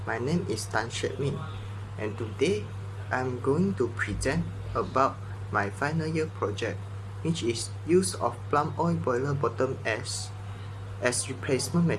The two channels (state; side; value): identical; both; correlation 1.00